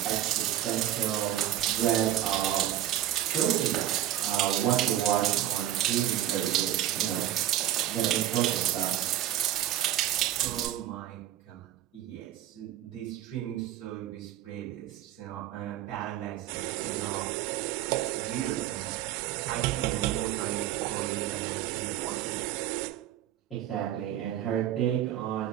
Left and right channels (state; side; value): quieter; left; 12.3 dB